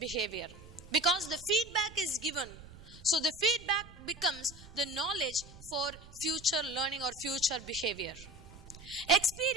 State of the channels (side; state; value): right; noise; rumble, 18 dB below the sound